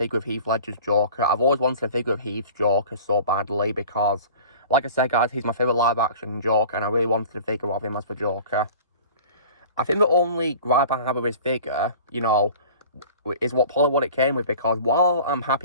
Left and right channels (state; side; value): inverted; both; correlation -0.43